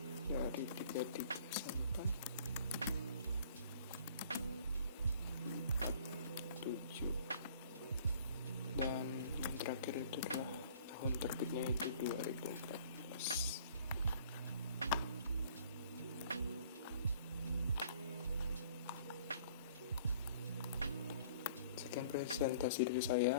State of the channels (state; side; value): inverted; both; correlation -0.54